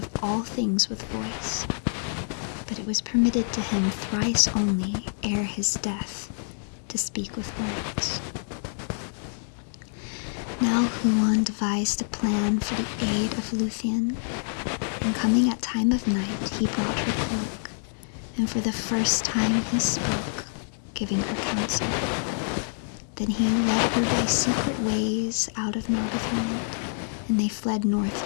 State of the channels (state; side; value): silent; right; digital silence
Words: all things with voice. But it was permitted to him thrice only, ere his death, to speak with words. Now Huan devised a plan for the aid of Lúthien, and coming at time of night, he brought her cloak, and for the first time he spoke, giving her counsel. Then he led her by secret ways out of Nargothrond, and they fled north